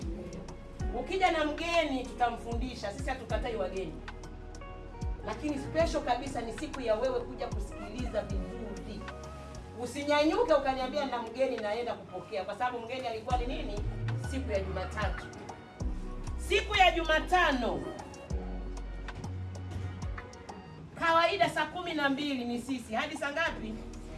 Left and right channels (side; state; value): both; identical; correlation 1.00